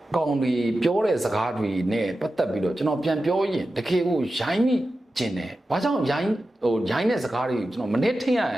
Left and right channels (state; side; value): normal; both; correlation 0.92